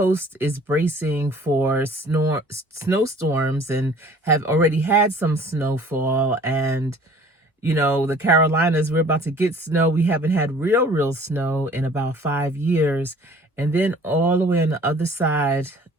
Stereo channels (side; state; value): both; normal; correlation 0.51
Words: is bracing for snowstorms and have already had some snowfall. And, the Carolinas, we're about to get snow. We haven't had real snow in about 5 years. And then all the way on the other side,